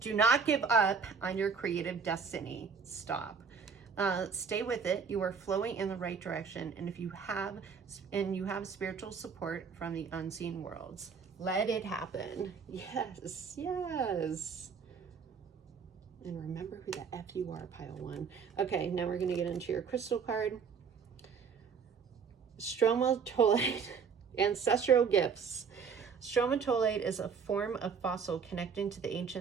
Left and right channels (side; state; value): left; quieter; 5.9 dB